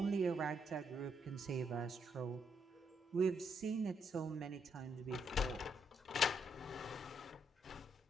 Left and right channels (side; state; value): both; normal; correlation 0.76